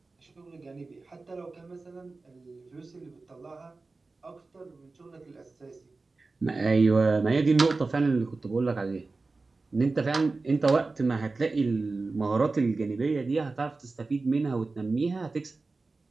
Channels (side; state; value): left; quieter; 3.7 dB